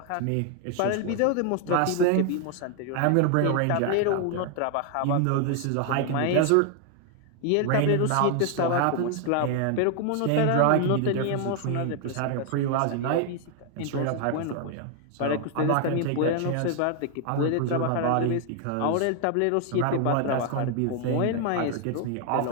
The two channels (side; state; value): both; different; correlation 0.00